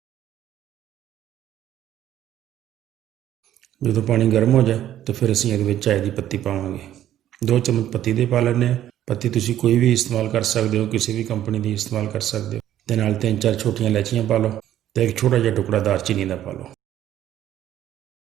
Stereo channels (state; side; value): quieter; left; 12.0 dB